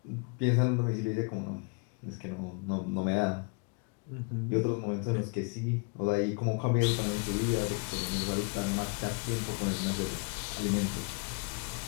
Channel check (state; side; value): quieter; right; 33.7 dB